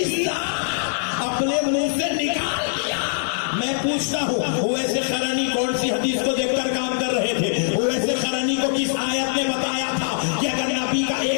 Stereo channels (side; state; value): right; silent; digital silence